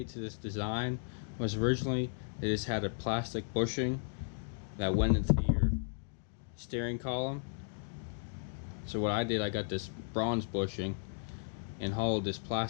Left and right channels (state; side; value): silent; right; digital silence